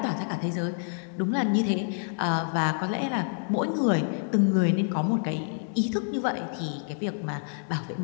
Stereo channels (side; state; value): right; silent; digital silence